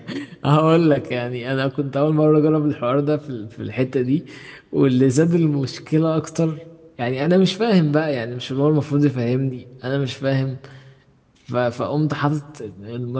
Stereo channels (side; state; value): both; identical; correlation 1.00